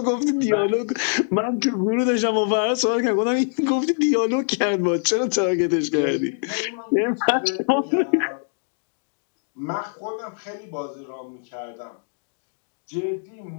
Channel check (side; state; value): right; silent; digital silence